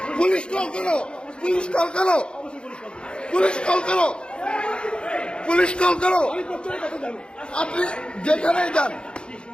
পুলিশ কল করো, পুলিশ কল করো, পুলিশ কল করো, পুলিশ কল করো। আপনি যেখানেই যান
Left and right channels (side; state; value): right; late; 0.054 ms